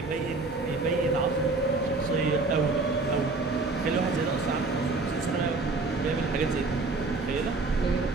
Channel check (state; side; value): quieter; left; 3.5 dB